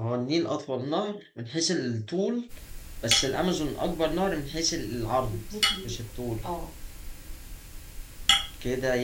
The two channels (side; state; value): both; identical; correlation 1.00